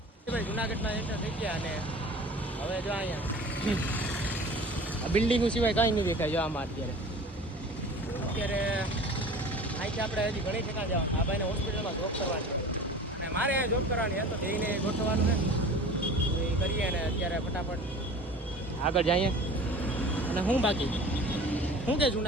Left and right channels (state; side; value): normal; both; correlation 0.41